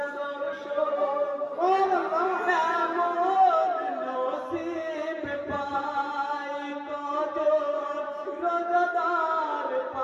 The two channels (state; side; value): identical; both; correlation 1.00